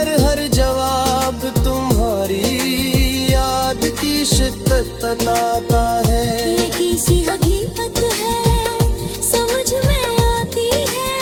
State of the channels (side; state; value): both; identical; correlation 1.00